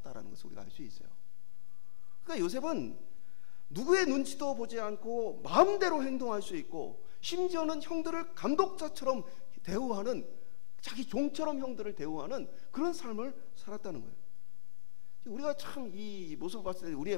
것을 우리가 알 수 있어요. 그러니까 요셉은 누구의 눈치도 보지 않고 마음대로 행동할 수 있고 심지어는 형들을 감독자처럼 대우하는, 자기 종처럼 형들을 대우하는 그런 삶을 살았다는 거예요. 우리가 참 이 모습을 봤을 때 우리의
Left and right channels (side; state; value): right; silent; 52 dB below the other